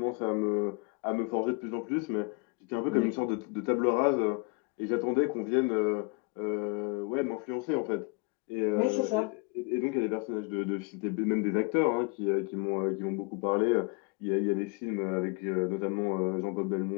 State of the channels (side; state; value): right; quieter; 29.5 dB